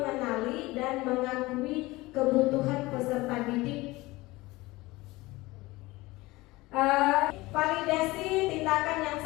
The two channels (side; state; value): right; quieter; 20.5 dB